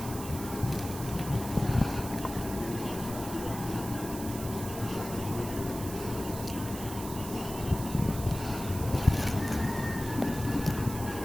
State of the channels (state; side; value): noise; right; hiss, 11 dB below the sound